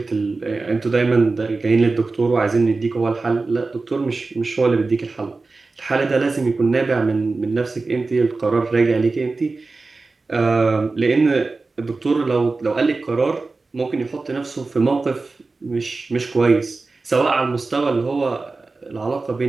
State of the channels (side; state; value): left; quieter; 3.8 dB